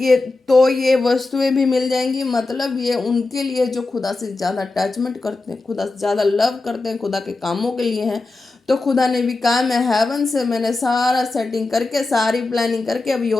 ये वस्तुएं भी मिल जाएंगी। मतलब ये उनके लिए जो खुदा से ज़्यादा अटैचमेंट करते हैं, खुदा से ज़्यादा लव करते हैं, खुदा के कामों के लिए हैं। तो खुदा ने भी कहा, मैं हेवन से मैंने सारा सेटिंग करके, सारी प्लानिंग करके, अब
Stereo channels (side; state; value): right; quieter; 3.3 dB